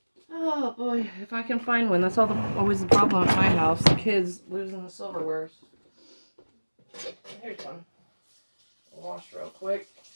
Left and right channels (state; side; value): inverted; both; correlation -1.00